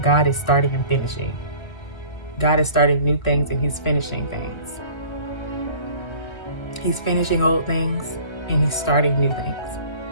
God is starting and finishing. God is starting new things and he's finishing things. He's finishing old things and he's starting new things.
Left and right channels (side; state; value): right; late; 1.4 ms